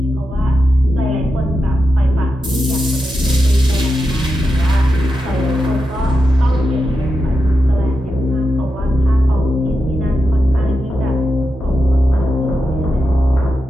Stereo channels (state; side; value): normal; both; correlation 0.88